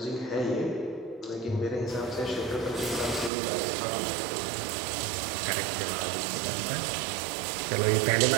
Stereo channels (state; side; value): drops out; left; at 3.3 s